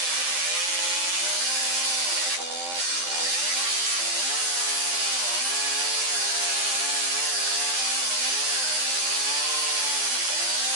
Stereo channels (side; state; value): left; late; 11 ms